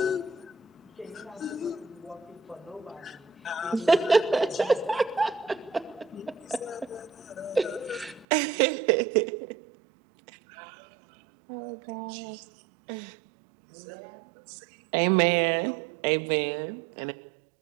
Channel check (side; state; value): left; drops out; at 8.2 s